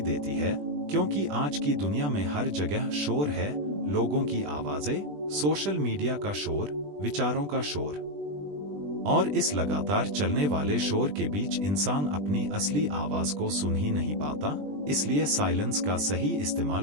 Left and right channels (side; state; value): left; late; 20 ms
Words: देती है। क्योंकि आज की दुनिया में हर जगह शोर है, लोगों की आवाजें, सोशल मीडिया का शोर, विचारों का शोर, और इस लगातार चलने वाले शोर के बीच इंसान अपनी असली आवाज को सुन ही नहीं पाता। इसलिए साइलेंस का सही